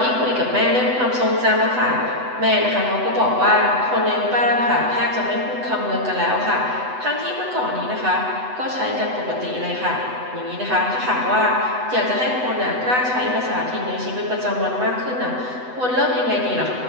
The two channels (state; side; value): late; left; 8.0 ms